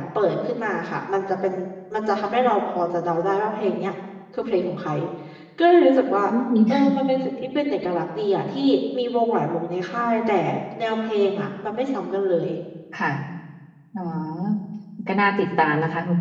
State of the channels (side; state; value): both; identical; correlation 1.00